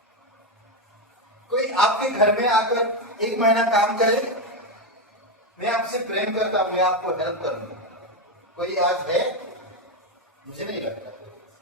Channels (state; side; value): normal; both; correlation 0.09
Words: कोई आपके घर में आकर 1 महीना काम करे, मैं आपसे प्रेम करता हूं, मैं आपको हेल्प करूंगा, कोई आज है? मुझे नहीं लगता।